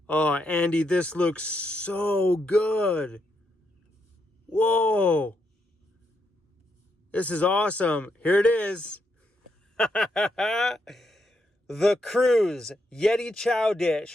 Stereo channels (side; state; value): both; normal; correlation 0.79